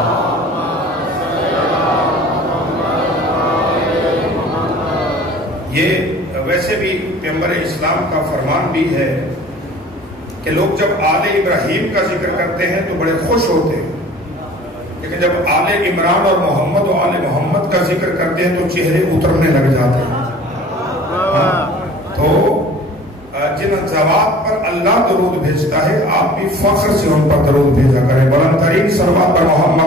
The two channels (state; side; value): normal; both; correlation 0.46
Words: یہ ویسے بھی پیغمبر اسلام کا فرمان بھی ہے کہ لوگ جب آل ابراہیم کا ذکر کرتے ہیں تو بڑے خوش ہوتے ہیں، لیکن جب آل عمران اور محمد و آل محمد کا ذکر کرتے ہیں تو چہرے اترنے لگ جاتے ہیں. ذوات پر اللہ درود بھیجتا ہے، آپ بھی فخر سے ان پر درود بھیجا کریں۔ بلند ترین صلوات پر